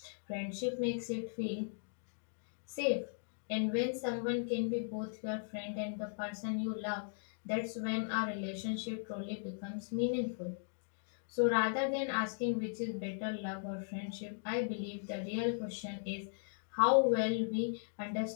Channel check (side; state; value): right; silent; digital silence